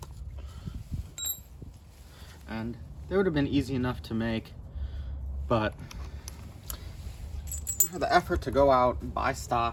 And they would have been easy enough to make, but for the effort to go out and buy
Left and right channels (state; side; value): identical; both; correlation 1.00